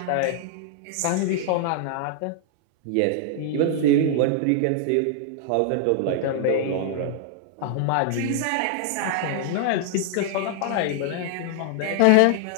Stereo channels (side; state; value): both; different; correlation 0.00